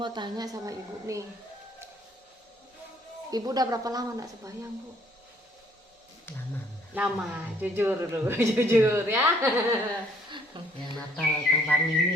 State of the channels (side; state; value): both; normal; correlation 0.63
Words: tanya sama ibu nih, ibu udah berapa lama nak sembahyang Bu? Lama, jujur dulu, jujur ya. Yang Natal tahun baru